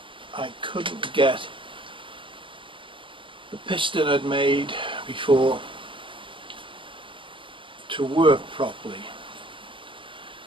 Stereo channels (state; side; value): late; left; 0.25 ms